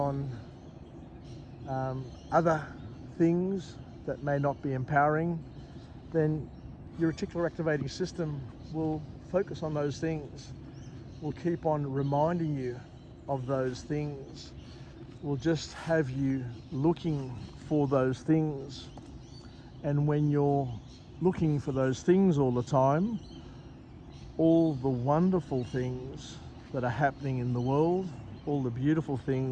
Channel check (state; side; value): identical; both; correlation 1.00